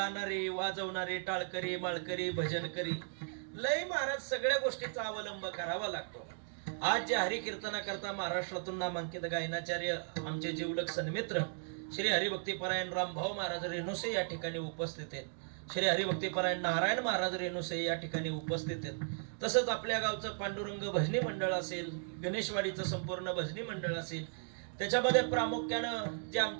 वाजवणारे, टाळकरी, माळकरी, भजनकरी, लय महाराज सगळ्या गोष्टीचा अवलंब करावा लागतो. आज जे हरिकीर्तनाकरता महाराष्ट्रातून नामांकित गायनाचार्य आमचे जीवलग सन्मित्र श्री हरिभक्तीपरायण रामभाऊ महाराज रेणुसे या ठिकाणी उपस्थित आहेत. श्री हरिभक्तीपरायण नारायण महाराज रेणुसे या ठिकाणी उपस्थित आहेत. तसंच आपल्या गावचं पांडुरंग भजनी मंडळ असेल, गणेशवाडीचं संपूर्ण भजनी मंडळ असेल, त्याच्यामध्ये प्रामुख्यानं जे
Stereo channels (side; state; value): left; silent; digital silence